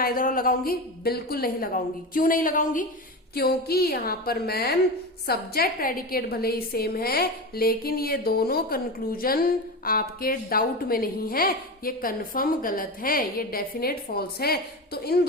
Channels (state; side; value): normal; both; correlation 0.23